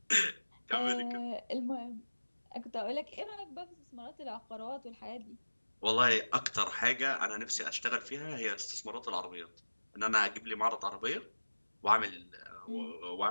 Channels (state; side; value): inverted; both; correlation -1.00